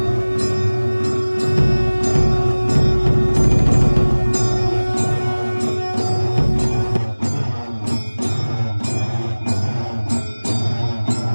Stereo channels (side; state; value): both; inverted; correlation -1.00